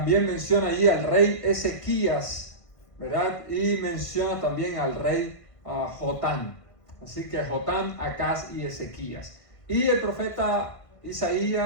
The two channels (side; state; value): right; late; 1.5 ms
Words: menciona allí al rey Ezequías, ¿verdad? Y menciona también al rey Jotam. Así que Jotam, Acaz y Ezequías. Y el profeta